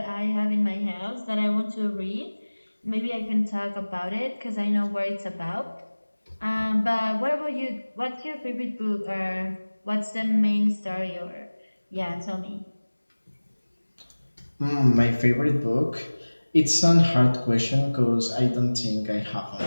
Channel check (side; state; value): both; inverted; correlation -1.00